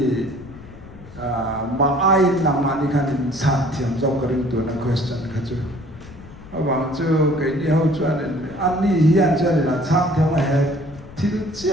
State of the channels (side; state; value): left; noise; rumble, 18 dB below the sound